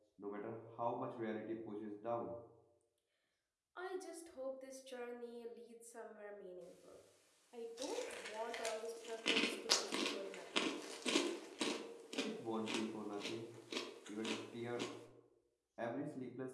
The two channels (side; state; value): both; identical; correlation 1.00